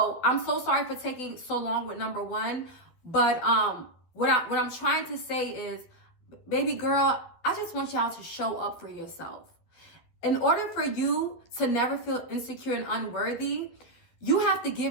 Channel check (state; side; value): late; right; 12 ms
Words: I'm so sorry for taking so long with number one. But what I'm trying to say is, baby girl, I just want y'all to show up for yourself. In order for you to never feel insecure and unworthy, you have to